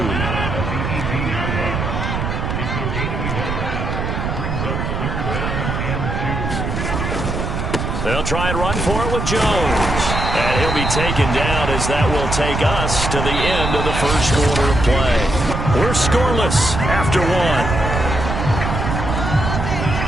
They'll try and run for it with Jones. And he'll be taken down as that will take us to the end of the first quarter of play. We're scoreless after 1.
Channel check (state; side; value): noise; right; rumble, 2 dB below the sound